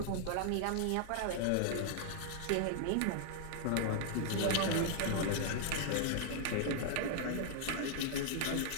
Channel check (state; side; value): different; both; correlation 0.00